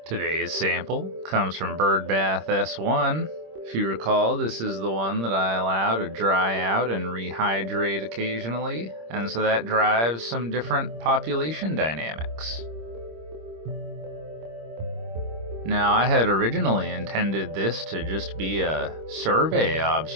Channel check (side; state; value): left; late; 26 ms